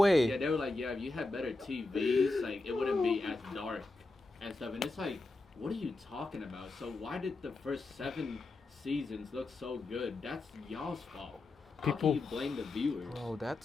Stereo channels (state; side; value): quieter; right; 3.1 dB